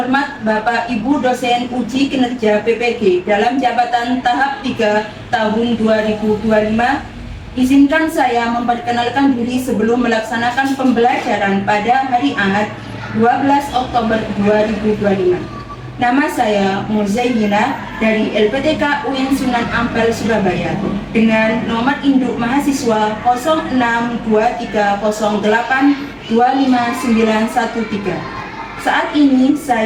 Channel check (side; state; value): both; identical; correlation 1.00